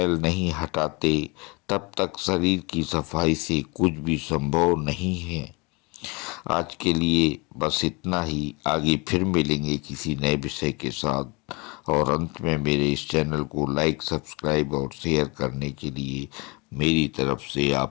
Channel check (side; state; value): right; quieter; 28.0 dB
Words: नहीं हटाते, तब तक शरीर की सफाई से कुछ भी संभव नहीं है। आज के लिए बस इतना ही। आगे फिर मिलेंगे किसी नए विषय के साथ। और अंत में मेरे इस चैनल को लाइक, सब्सक्राइब और शेयर करने के लिए मेरी तरफ से